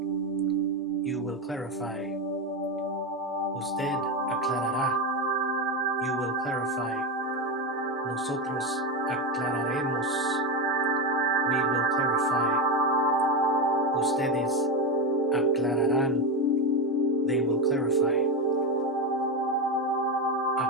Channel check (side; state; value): both; normal; correlation 0.13